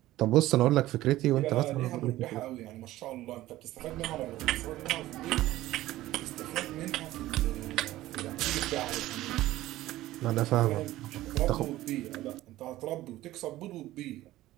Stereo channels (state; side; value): quieter; left; 15.9 dB